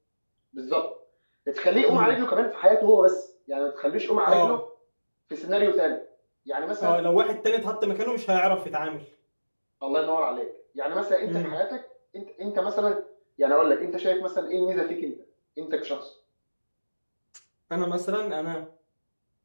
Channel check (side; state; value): both; inverted; correlation -1.00